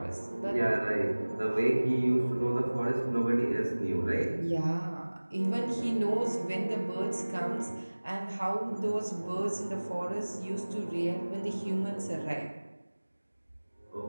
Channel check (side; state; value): both; inverted; correlation -1.00